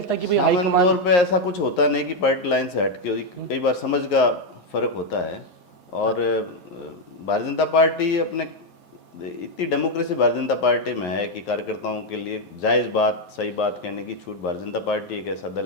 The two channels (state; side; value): late; right; 9.5 ms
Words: कि भाई सामान्य तौर पे ऐसा कुछ होता नहीं कि पार्टी लाइन से हट के, कई बार समझ का फर्क होता है। और भारतीय जनता पार्टी अपने इतनी डेमोक्रेसी भारतीय जनता पार्टी में है कि कार्यकर्ताओं के लिए जायज़ बात, सही बात कहने की छूट भारतीय जनता पार्टी एक ऐसा